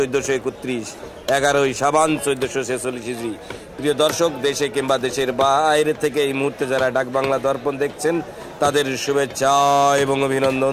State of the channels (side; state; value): both; identical; correlation 1.00